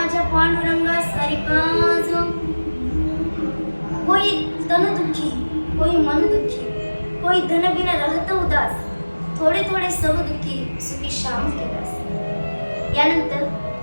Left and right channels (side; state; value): both; inverted; correlation -1.00